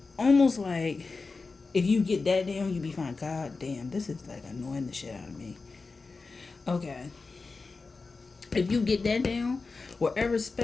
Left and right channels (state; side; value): quieter; right; 4.1 dB